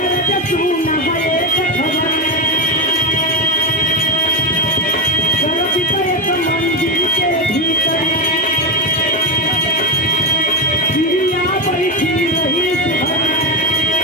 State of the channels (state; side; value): normal; both; correlation 0.14